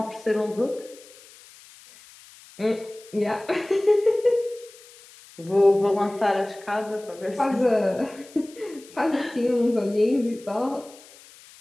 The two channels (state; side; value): noise; left; hiss, 22 dB below the sound